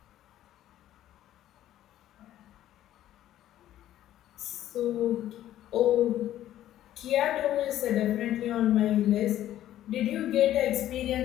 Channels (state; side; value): quieter; right; 12.7 dB